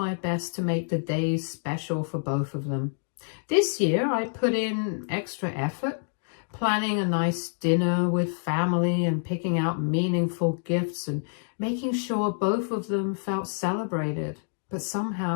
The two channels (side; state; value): right; silent; digital silence